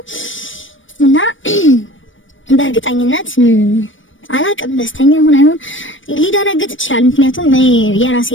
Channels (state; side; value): late; right; 0.56 ms